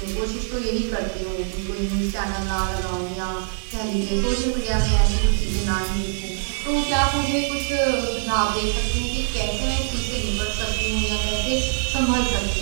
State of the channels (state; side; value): silent; left; digital silence